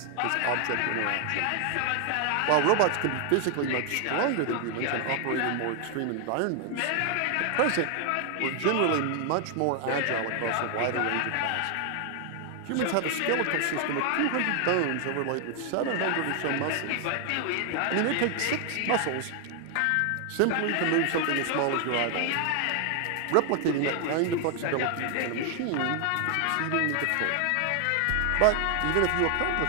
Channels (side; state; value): both; different; correlation 0.00